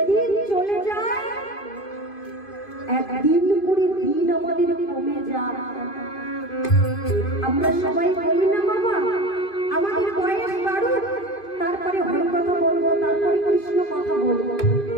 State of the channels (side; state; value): right; late; 2.5 ms